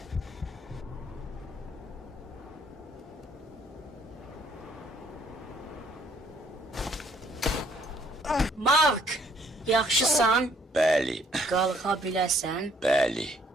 Mark, yaxşısan? Bəli, Qalxa biləsən? bəli.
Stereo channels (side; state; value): both; normal; correlation 0.64